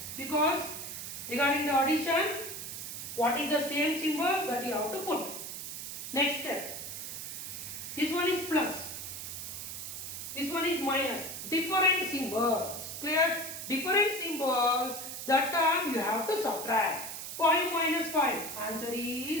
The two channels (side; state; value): right; noise; hiss, 7 dB below the sound